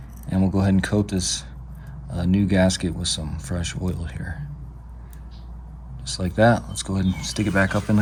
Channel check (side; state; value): both; identical; correlation 1.00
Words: And we'll go ahead and coat this new gasket with some fresh oil here. Just like that. Let's go ahead and stick it back up in